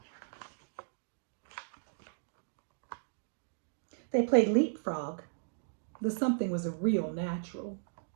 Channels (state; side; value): silent; left; digital silence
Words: They played leapfrog. The something was a real natural.